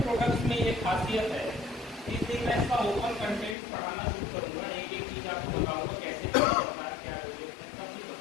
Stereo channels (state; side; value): drops out; right; at 3.6 s